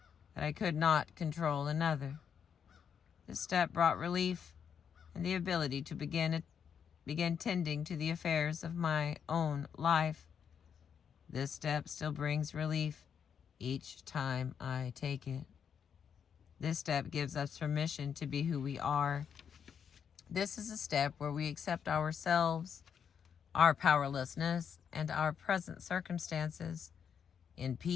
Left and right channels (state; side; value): quieter; right; 7.5 dB